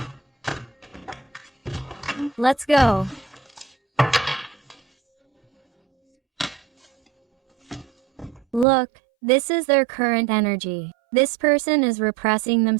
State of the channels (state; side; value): drops out; left; at 8.7 s